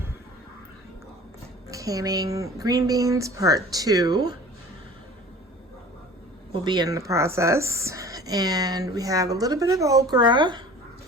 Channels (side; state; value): both; normal; correlation 0.43